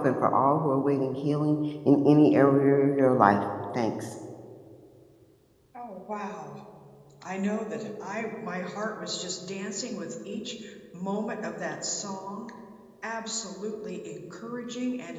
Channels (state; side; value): identical; both; correlation 1.00